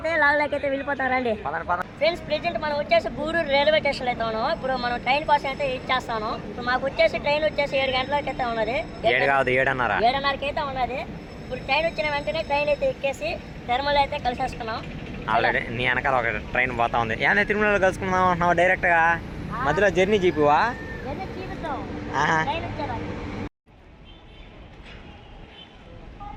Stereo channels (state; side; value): identical; both; correlation 1.00